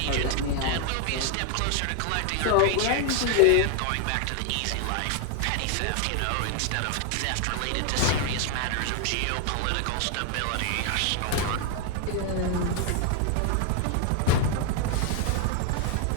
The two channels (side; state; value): both; different; correlation 0.01